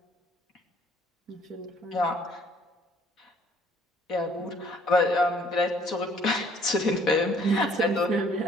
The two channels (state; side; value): normal; both; correlation 0.60